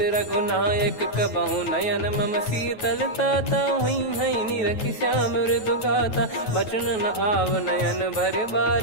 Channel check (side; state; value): right; late; 9.2 ms